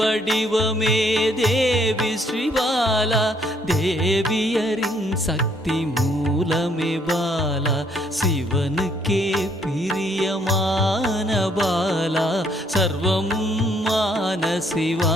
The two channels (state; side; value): normal; both; correlation 0.67